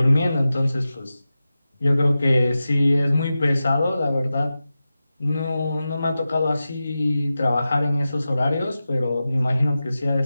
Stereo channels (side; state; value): both; inverted; correlation -0.93